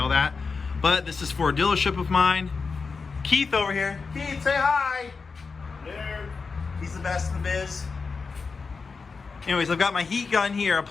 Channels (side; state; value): right; quieter; 4.8 dB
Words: that? But this is for a dealership of mine. Keith over here. Keith, say hi. There. He's the best in the biz. Anyways, I've got my heat gun here